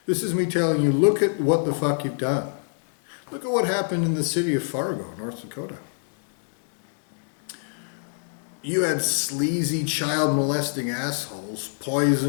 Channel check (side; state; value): right; silent; digital silence